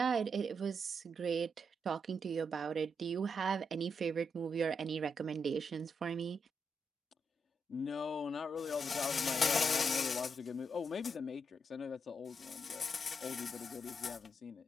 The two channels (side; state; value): both; normal; correlation 0.81